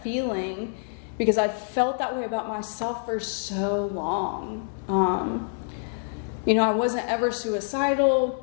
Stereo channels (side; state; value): right; silent; digital silence